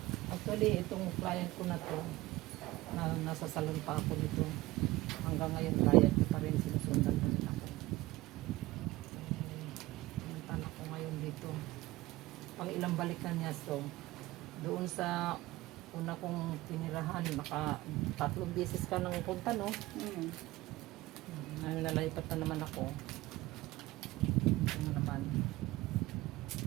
Actually, itong client ko na to, nasa salon pa ako nito. Hanggang ngayon, client ko pa rin. Sinusundan ko nila ako. Punta na ako ngayon dito. Pang ilang balikan niya. So, doon sa una kong tinirahan, 3 beses ka nang punta, no? Nalalipat na naman ako. Ano naman.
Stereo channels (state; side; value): quieter; left; 18.7 dB